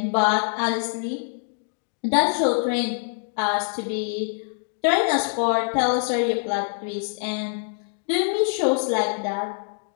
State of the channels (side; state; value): right; silent; digital silence